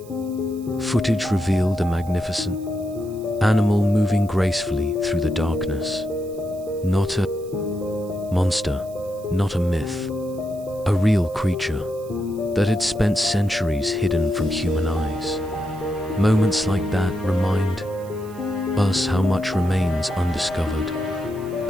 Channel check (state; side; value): noise; right; hiss, 24 dB below the sound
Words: footage revealed a magnificent animal moving gracefully through the darkness. Not a monster, not a myth, a real creature that had spent centuries hidden from human eyes. Moments like that remind us how much remains undiscovered,